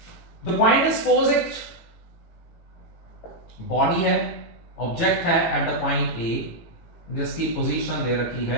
the point is posit, body है, object है at the point A, जिसकी position दे रखी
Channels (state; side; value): late; right; 18 ms